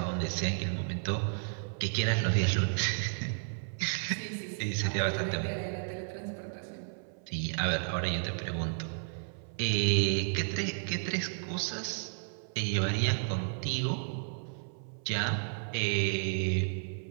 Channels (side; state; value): left; silent; 55 dB below the other